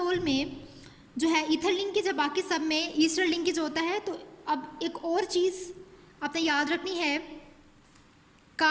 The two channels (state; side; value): identical; both; correlation 1.00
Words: में जो है ईथर लिंकेज है, बाकी सब में ईस्टर लिंकेज होता है. तो अब एक और चीज़ आपने याद रखनी है,